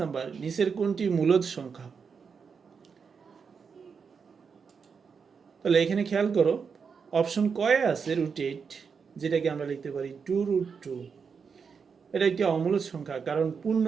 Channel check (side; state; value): left; quieter; 5.9 dB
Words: নাম্বার, নিচের কোনটি মূলদ সংখ্যা? তাহলে এখানে খেয়াল করো, অপশন কয়ে আছে √8, যেটাকে আমরা লিখতে পারি 2√2। এটা একটি অমূলদ সংখ্যা, কারণ